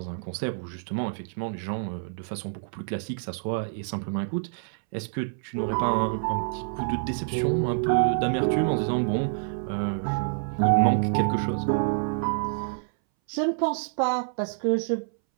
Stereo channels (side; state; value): left; silent; 60 dB below the other